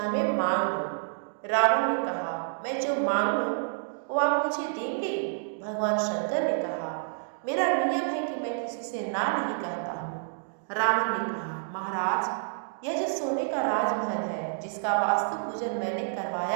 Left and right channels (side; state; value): left; silent; digital silence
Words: में मांग लो। रावण ने कहा, मैं जो मांगू वो आप मुझे देंगे। भगवान शंकर ने कहा, मेरा नियम है कि मैं किसी से ना नहीं कहता हूँ। रावण ने कहा, महाराज, यह जो सोने का राजमहल है जिसका वास्तु पूजन मैंने